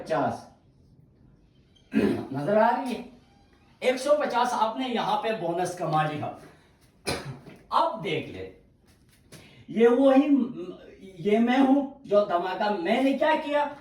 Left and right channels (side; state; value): both; identical; correlation 1.00